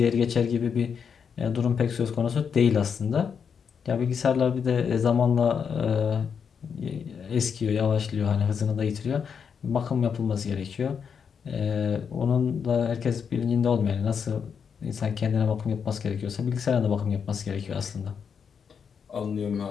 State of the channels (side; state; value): right; quieter; 6.8 dB